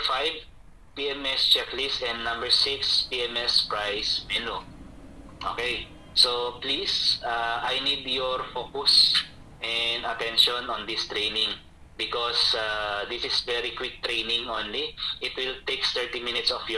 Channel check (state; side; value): identical; both; correlation 1.00